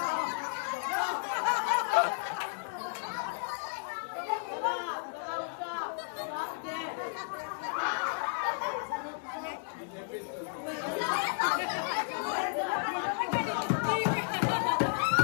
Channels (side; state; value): right; silent; digital silence